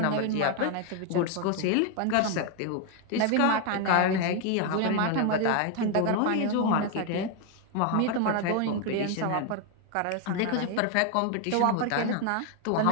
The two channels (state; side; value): different; both; correlation 0.01